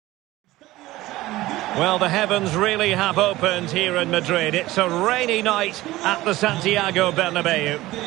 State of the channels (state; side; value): quieter; left; 17.5 dB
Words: Well, the heavens really have opened here in Madrid. It's a rainy night at the Santiago Bernabeu.